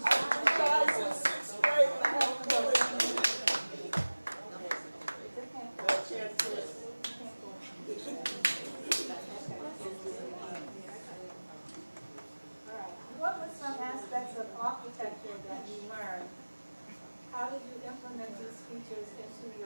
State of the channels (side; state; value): both; inverted; correlation -1.00